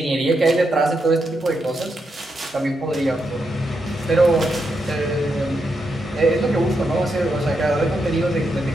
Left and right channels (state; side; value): normal; both; correlation 0.83